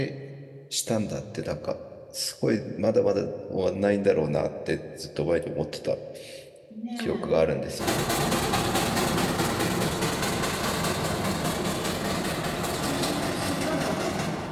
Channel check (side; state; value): both; identical; correlation 1.00